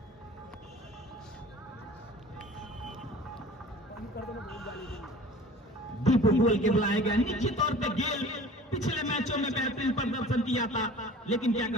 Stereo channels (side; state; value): both; normal; correlation 0.44